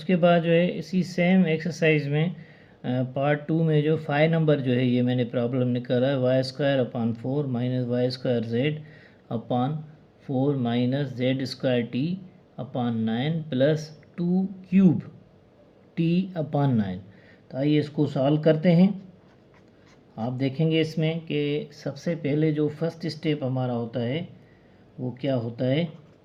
बाद जो है इसी सेम एक्सरसाइज में पार्ट 2 में जो 5 नंबर जो है ये मैंने प्रॉब्लम निकाला है, Y square upon 4 minus Y square Z upon 4 minus Z square T upon 9 plus 2 cube T upon 9। तो आइए इसको सॉल्व करते हैं। आप देखेंगे इसमें कि सबसे पहले जो फर्स्ट स्टेप हमारा होता है वो क्या होता है,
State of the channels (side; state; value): both; identical; correlation 1.00